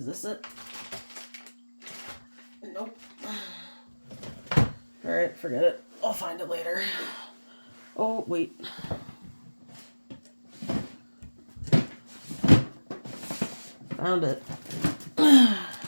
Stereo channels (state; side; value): inverted; both; correlation -1.00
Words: this it? Nope. Alright, forget it. I'll find it later. Oh, wait. Found it. I